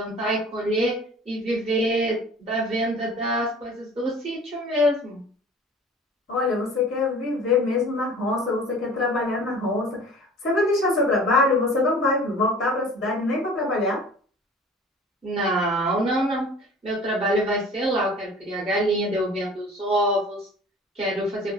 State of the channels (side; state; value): both; normal; correlation 0.45